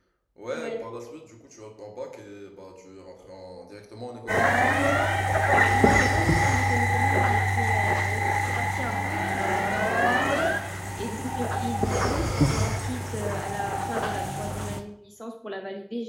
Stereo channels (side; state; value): both; identical; correlation 1.00